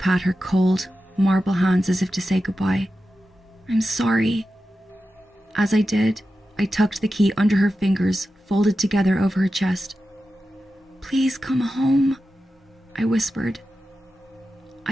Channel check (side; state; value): both; normal; correlation 0.91